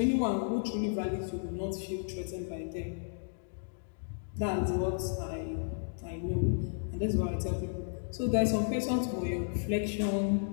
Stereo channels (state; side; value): silent; right; digital silence